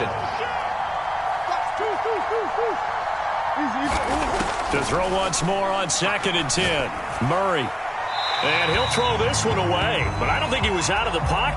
To throw once more on 2nd and 10. Murray. And he'll throw this one away. But I don't think he was out of the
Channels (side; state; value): both; identical; correlation 1.00